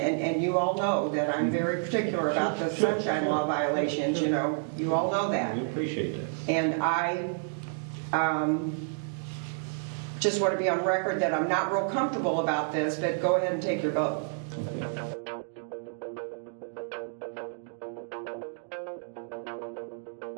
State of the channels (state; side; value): silent; left; digital silence